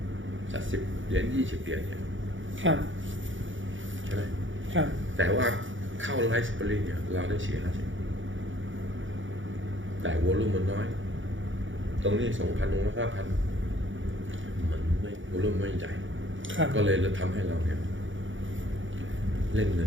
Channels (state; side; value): late; left; 0.56 ms